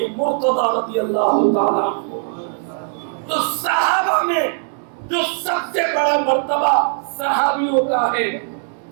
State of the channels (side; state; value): left; silent; digital silence